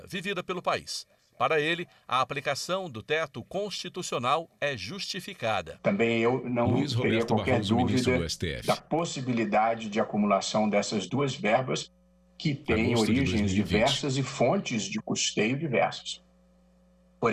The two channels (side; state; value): both; identical; correlation 1.00